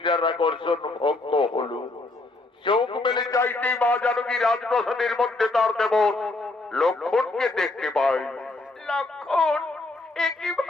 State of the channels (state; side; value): quieter; right; 3.1 dB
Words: আকর্ষণ ভঙ্গ হলো। চোখ মেলে চাইতেই মা জানকী রাজপ্রাসাদের মধ্যে তার দেবর লক্ষ্মণকে দেখতে পায়। লক্ষ্মণ, একই